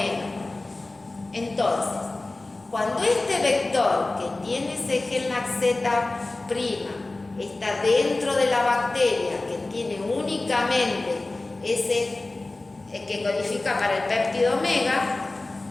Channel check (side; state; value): right; quieter; 3.0 dB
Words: Entonces, cuando este vector que tiene ese gen laxeta prima está dentro de la bacteria, que tiene únicamente ese que codifica para el péptido omega,